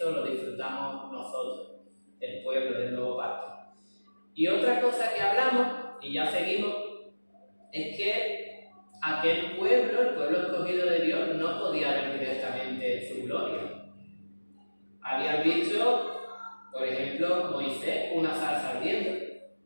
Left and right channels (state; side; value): inverted; both; correlation -1.00